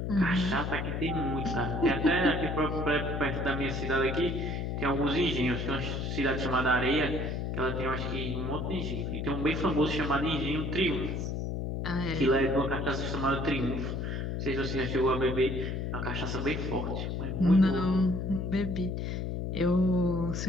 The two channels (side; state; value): left; noise; hum, 2 dB below the sound